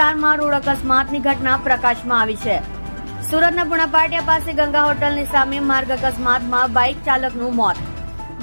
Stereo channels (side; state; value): both; inverted; correlation -1.00